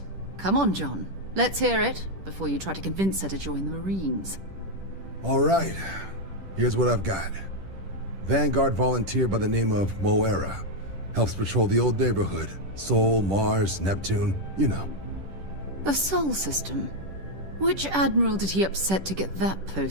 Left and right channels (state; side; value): late; left; 10 ms